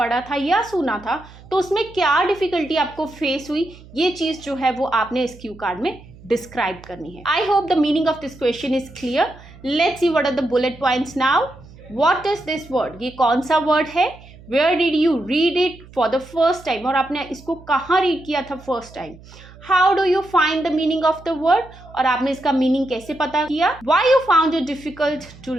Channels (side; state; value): right; noise; hum, 21 dB below the sound